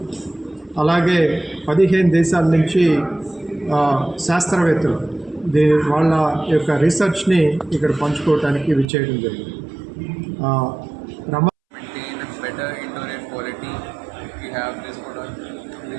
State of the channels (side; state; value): left; drops out; at 8.8 s